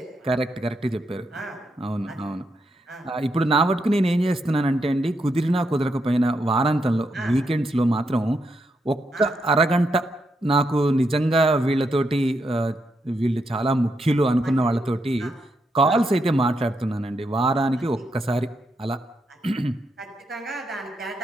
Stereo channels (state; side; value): normal; both; correlation 0.81